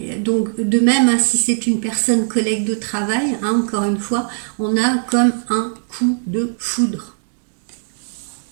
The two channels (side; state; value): left; silent; digital silence